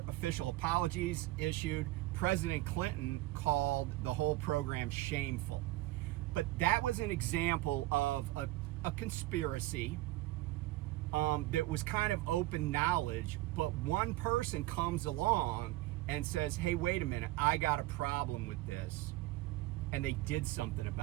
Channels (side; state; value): left; quieter; 17.9 dB